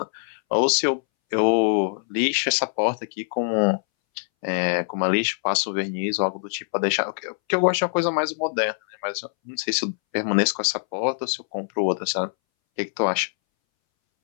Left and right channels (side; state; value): right; silent; 62 dB below the other